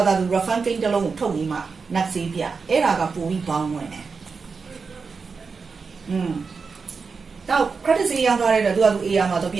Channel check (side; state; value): left; quieter; 5.0 dB